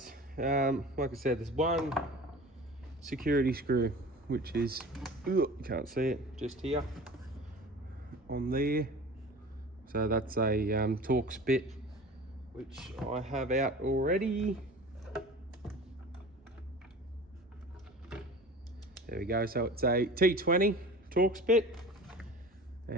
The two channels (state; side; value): normal; both; correlation 0.40